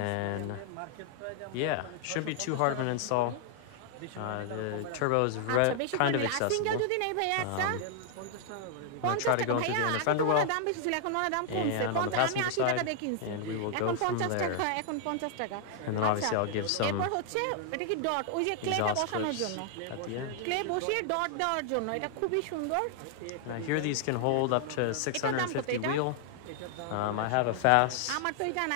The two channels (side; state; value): both; different; correlation 0.00